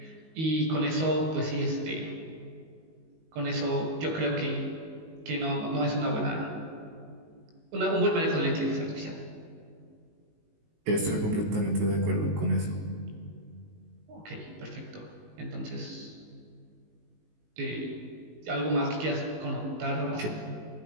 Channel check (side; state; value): left; late; 19 ms